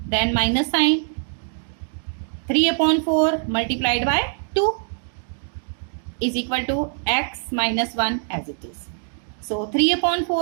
Then minus sign, 3 upon 4 multiplied by 2 is equal to x minus 1 as it is. So 3 upon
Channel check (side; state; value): left; silent; digital silence